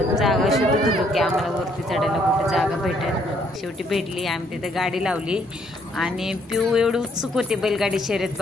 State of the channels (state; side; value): normal; both; correlation 0.68